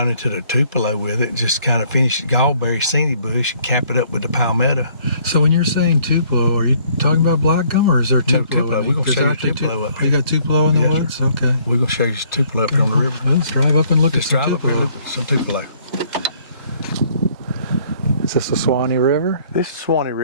into the tupelo with it, and just kind of finish the gallberry senni bush and cap it up with the palmetto. So when you're saying tupelo, are you talking about black gum, or is there tupelo? No, tupelo. We're going to show you tupelo up here. You got tupelo in the woods? Sir. Okay. We're going to show you tupelo up here on the river. Well, let's drive up and look Let's at some drive up here and look at some tupelo. Is this the Suwannee River? This is Suwannee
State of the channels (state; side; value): inverted; both; correlation -0.62